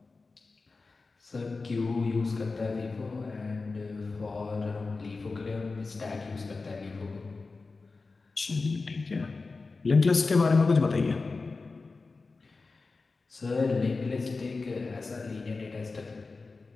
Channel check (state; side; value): quieter; right; 3.9 dB